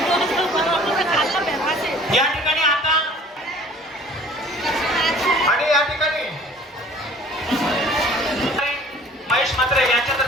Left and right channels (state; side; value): normal; both; correlation 0.50